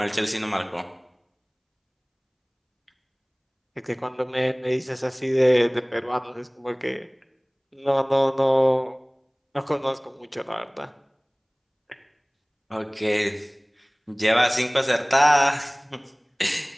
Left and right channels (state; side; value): identical; both; correlation 1.00